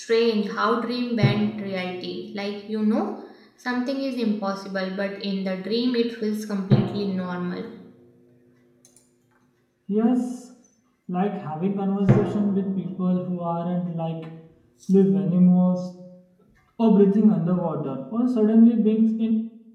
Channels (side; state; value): both; identical; correlation 1.00